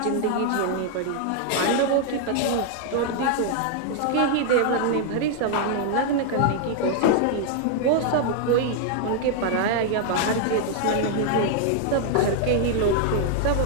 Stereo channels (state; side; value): different; both; correlation 0.00